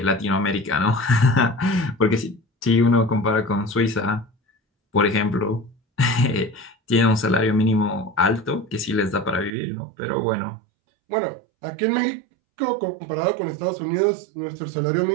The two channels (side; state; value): left; drops out; at 9.5 s